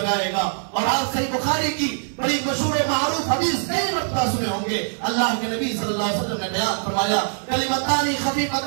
گا. اور آپ صحیح بخاری کی بڑی مشہور و معروف حدیث کئی مرتبہ سنے ہوں گے. اللہ کے نبی صلی اللہ علیہ وسلم نے بیان فرمایا کلمتان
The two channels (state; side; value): silent; left; 60 dB below the other